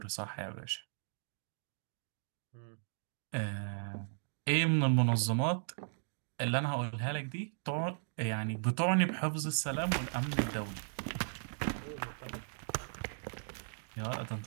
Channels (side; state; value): left; silent; digital silence